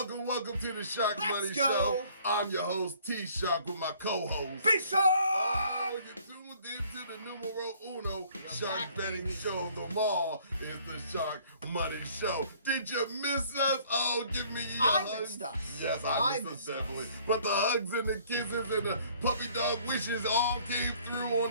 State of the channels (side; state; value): both; inverted; correlation -0.58